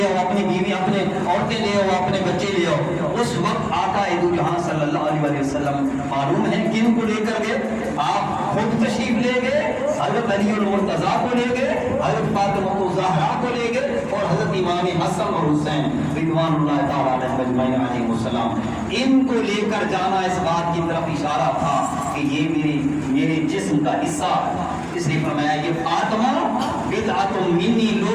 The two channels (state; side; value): identical; both; correlation 1.00